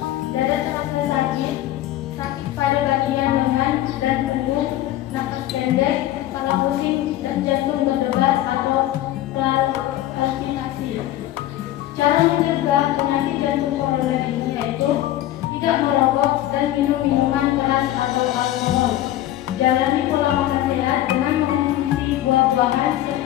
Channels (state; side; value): quieter; right; 14.0 dB